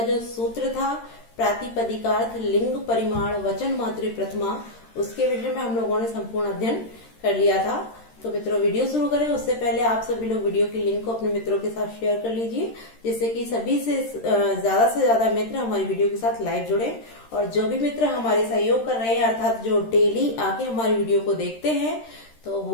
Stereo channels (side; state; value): right; late; 13 ms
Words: जो सूत्र था प्रातिपदिकार्थ लिंग परिमाण वचन मातृ प्रथमा, उसके विषय में हम लोगों ने संपूर्ण अध्ययन कर लिया था। तो मित्रों, वीडियो शुरू करें उससे पहले आप सभी लोग वीडियो की लिंक को अपने मित्रों के साथ शेयर कर लीजिए, जिससे कि सभी से ज्यादा मित्र हमारी वीडियो के साथ लाइव जुड़े। और जो भी मित्र हमारे सहयोग कर रहे हैं, अर्थात जो डेली आके हमारी वीडियो को देखते हैं, तो